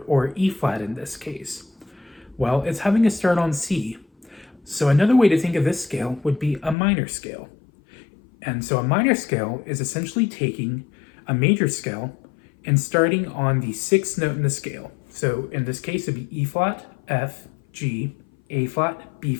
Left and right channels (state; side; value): drops out; right; at 6.8 s